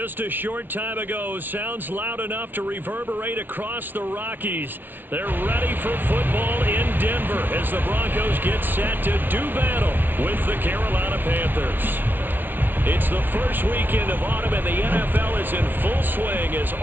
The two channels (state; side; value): late; left; 0.091 ms